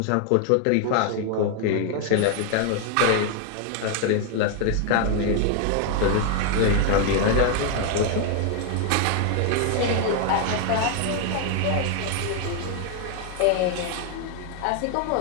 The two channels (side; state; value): both; different; correlation 0.00